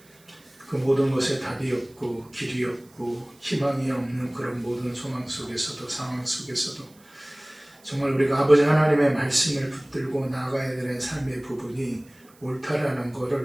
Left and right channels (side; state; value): right; noise; hiss, 28 dB below the sound